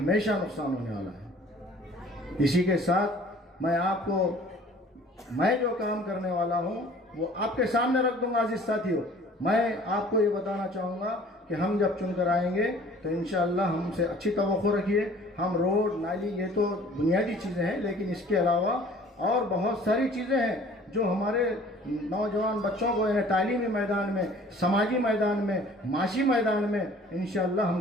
नुकसान होने वाला है। इसी के साथ मैं जो काम करने वाला हूं वो आपके सामने रख दूंगा। अजीज साथियों, मैं आपको ये बताना चाहूँगा कि हम जब चुनकर आएंगे तो इंशाअल्लाह हमसे अच्छी तवक्को रखिए। हम रोड, नाली, ये तो बुनियादी चीज़ें हैं, लेकिन इसके अलावा और बहुत सारी चीज़ें हैं जो हमारे नौजवान बच्चों को तालीमी मैदान में, समाजी मैदान में, माशी मैदान में इंशाअल्लाह हम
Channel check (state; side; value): normal; both; correlation 0.51